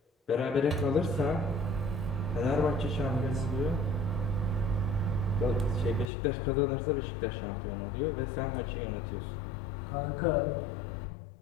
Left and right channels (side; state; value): right; drops out; at 6.1 s